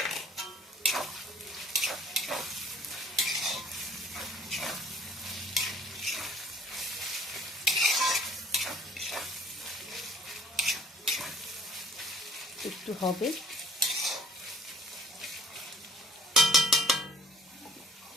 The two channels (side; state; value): both; normal; correlation 0.54